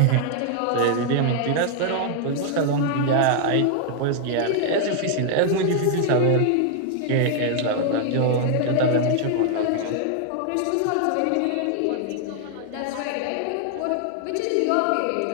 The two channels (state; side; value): different; both; correlation 0.00